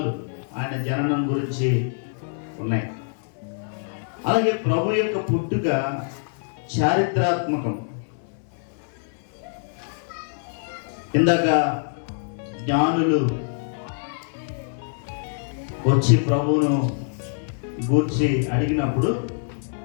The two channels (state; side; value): silent; right; digital silence